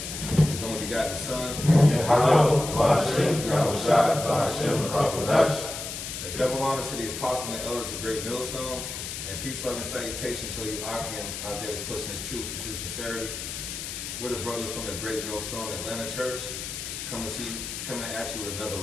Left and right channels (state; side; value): noise; left; hiss, 7 dB below the sound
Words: His only begotten Son. Double honor to the apostle and the elders of Great Millstone, and peace, love, and salutation to you, Akim, out there that's pushing His truth and true sincerity. We're the brothers from the Great Millstone Atlanta Church, coming at you with another